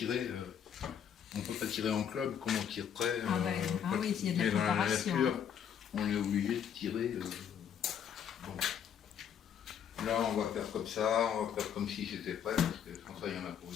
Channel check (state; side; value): quieter; right; 8.5 dB